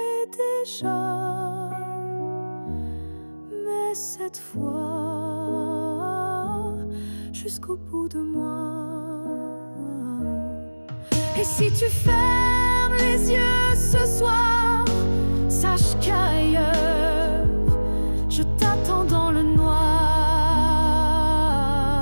déjà, mais cette fois jusqu'au bout de moi. Et si tu fermes les yeux ce soir, sache qu'ailleurs je t'attends dans le noir.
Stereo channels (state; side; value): inverted; both; correlation -1.00